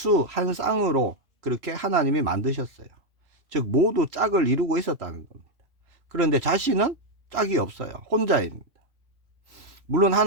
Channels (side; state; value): left; late; 3.0 ms